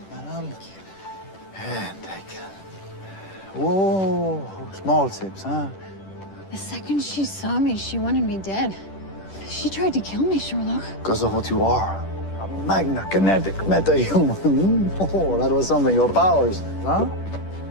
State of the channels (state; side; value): late; right; 10 ms